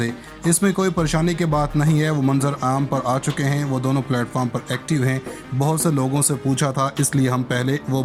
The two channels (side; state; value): both; identical; correlation 1.00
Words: इसमें कोई परेशानी की बात नहीं है। वो मंजर आम पर आ चुके हैं। वो दोनों प्लेटफॉर्म पर एक्टिव हैं। बहुत से लोगों से पूछा था, इसलिए हम पहले वो